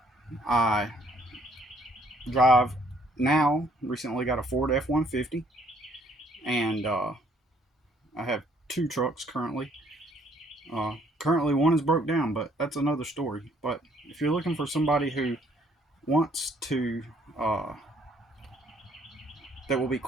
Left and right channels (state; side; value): normal; both; correlation 0.64